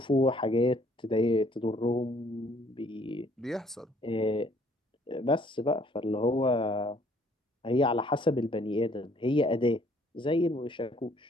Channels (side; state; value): both; normal; correlation 0.62